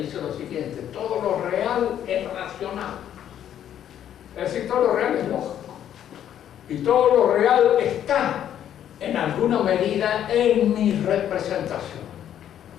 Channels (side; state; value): right; quieter; 10.3 dB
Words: lo siguiente: todo lo real es racional. Es decir, todo lo real es lógico. Y todo lo real está, en alguna medida, en mi representación.